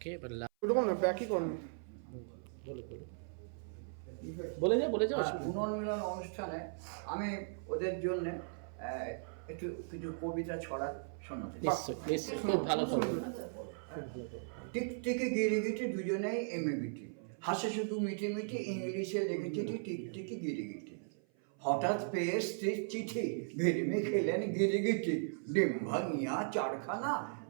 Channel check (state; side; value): silent; left; 53 dB below the other